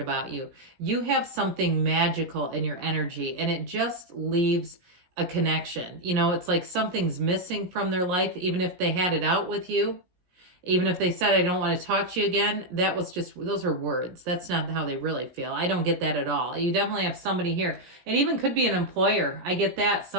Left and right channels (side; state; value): left; late; 17 ms